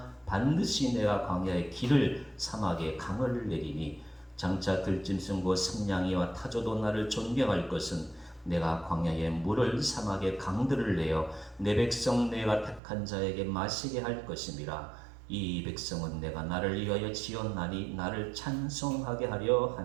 반드시 내가 광야의 길을 사막에 강을 내리니 장차 들짐승과 승냥이와 타조도 나를 존경할 것은 내가 광야에 물을 사막에 강들을 내어 내 백성 내가 택한 자에게 마시게 할 것임이라. 이 백성은 내가 나를 위하여 지었나니 나를 찬송하게 하려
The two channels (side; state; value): left; drops out; at 12.8 s